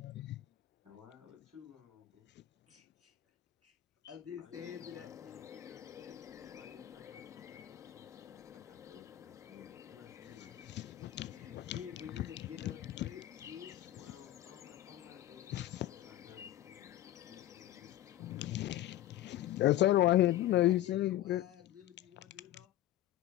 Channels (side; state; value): right; quieter; 13.9 dB